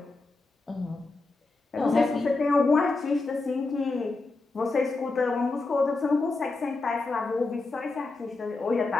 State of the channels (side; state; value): right; quieter; 3.5 dB